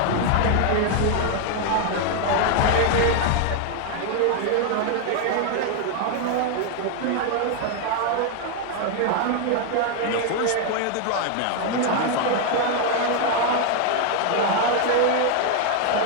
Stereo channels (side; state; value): both; different; correlation 0.01